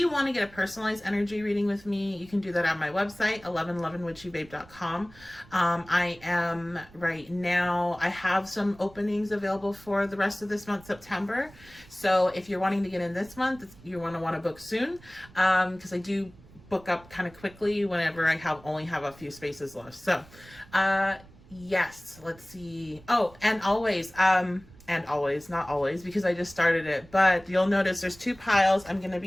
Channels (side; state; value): right; noise; rumble, 23 dB below the sound